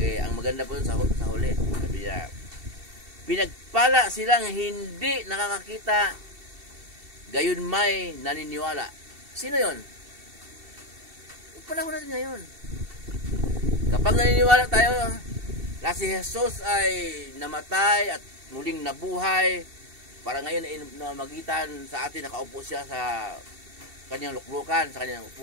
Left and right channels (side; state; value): left; late; 2.7 ms